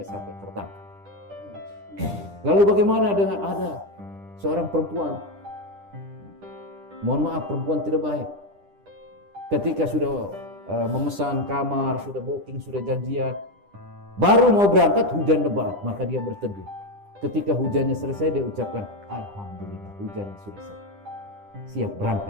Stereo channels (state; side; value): late; left; 10 ms